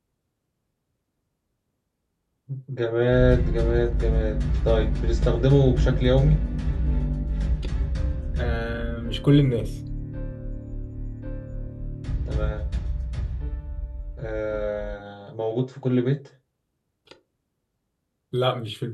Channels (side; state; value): both; identical; correlation 1.00